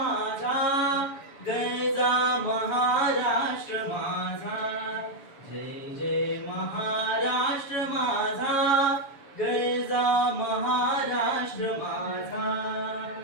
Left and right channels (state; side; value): late; right; 7.0 ms